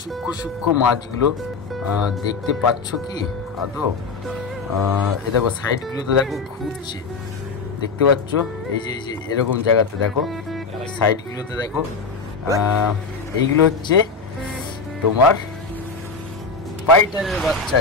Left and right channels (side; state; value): right; quieter; 4.5 dB